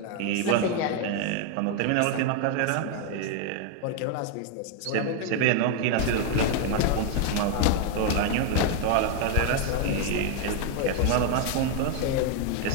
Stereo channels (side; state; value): both; different; correlation 0.01